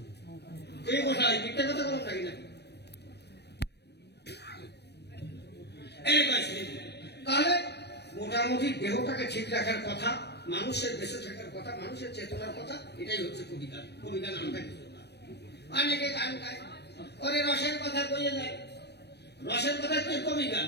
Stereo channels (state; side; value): late; right; 0.48 ms